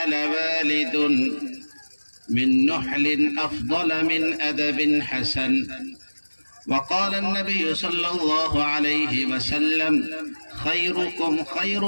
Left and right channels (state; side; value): inverted; both; correlation -1.00